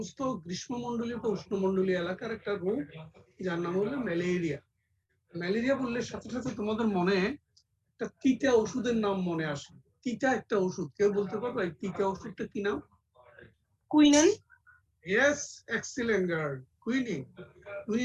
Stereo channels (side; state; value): both; identical; correlation 1.00